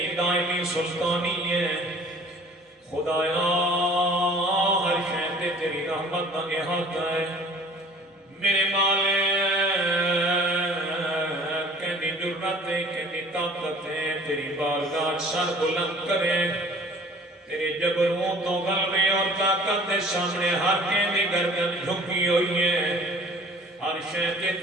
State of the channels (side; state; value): both; normal; correlation 0.49